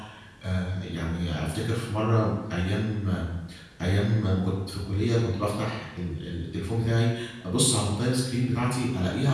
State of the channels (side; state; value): both; identical; correlation 1.00